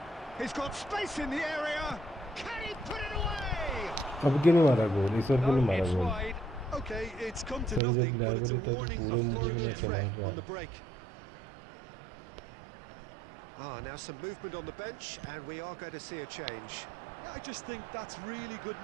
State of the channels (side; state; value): left; drops out; at 7.8 s